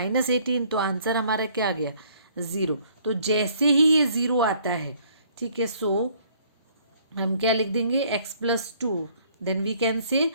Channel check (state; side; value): inverted; both; correlation -0.61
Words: तो आंसर हमारा क्या आ गया, 0। तो जैसे ही ये 0 आता है, ठीक है, सो हम क्या लिख देंगे, x+2, then we can say